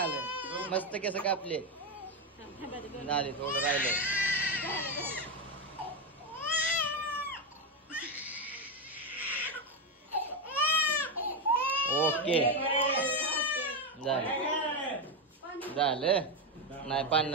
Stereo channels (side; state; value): both; normal; correlation 0.09